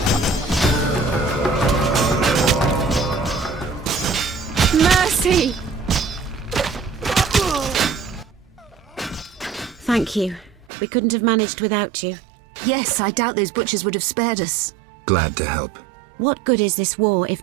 Mercy! Thank you. We couldn't have managed without you. Yes, I doubt those butchers would have spared us. Glad to help. What good is this war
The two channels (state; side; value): drops out; left; at 10.7 s